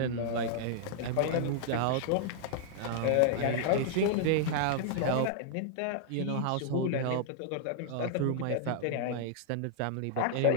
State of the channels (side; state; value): both; different; correlation -0.01